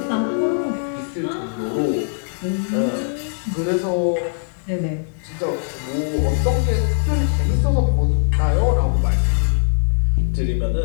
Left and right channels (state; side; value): silent; right; digital silence